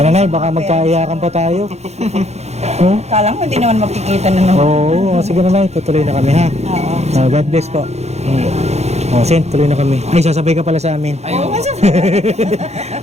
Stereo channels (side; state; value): left; late; 0.31 ms